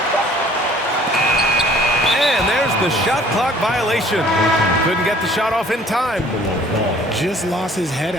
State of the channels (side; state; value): both; normal; correlation 0.54